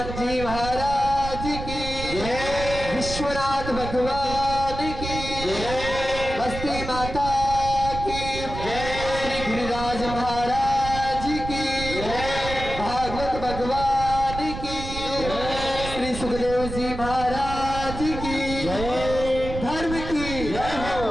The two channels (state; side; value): noise; right; rumble, 8 dB below the sound